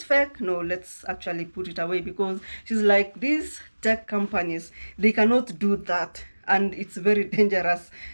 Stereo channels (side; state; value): both; inverted; correlation -1.00